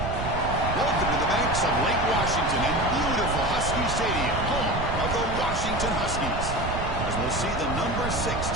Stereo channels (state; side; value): noise; right; rumble, 4 dB below the sound